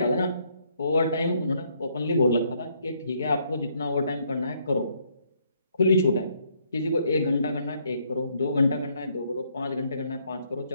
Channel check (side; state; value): both; inverted; correlation -0.70